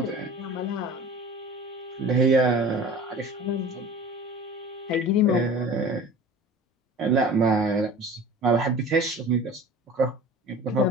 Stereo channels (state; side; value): normal; both; correlation 0.40